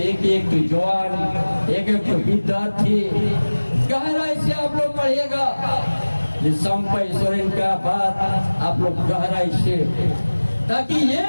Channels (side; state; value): both; inverted; correlation -1.00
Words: एक तो जवान, एक तो विद्यार्थी गहराई से आप लोग पढ़िएगा। संपय सोरेन का बात आप लोग गहराई से, ताकि ये